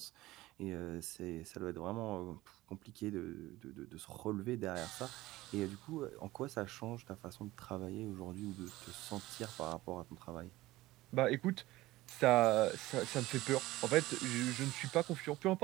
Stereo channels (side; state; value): left; quieter; 17.9 dB